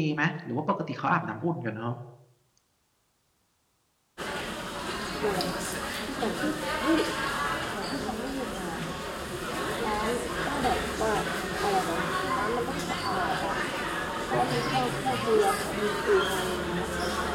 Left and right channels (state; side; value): identical; both; correlation 1.00